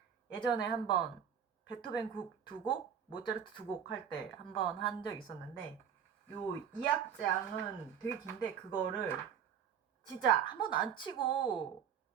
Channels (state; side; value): quieter; left; 8.3 dB